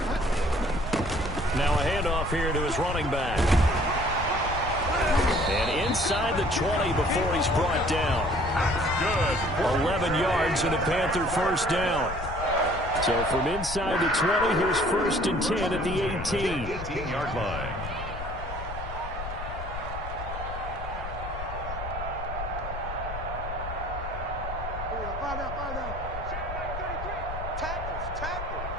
Now a handoff here to his running back. And inside the 20 before he's brought down. Good. 11 yards and a Panther 1st down. So from inside the 20, here's 1st and 10 at the 18. 18-yard line.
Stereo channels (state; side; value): noise; left; rumble, 8 dB below the sound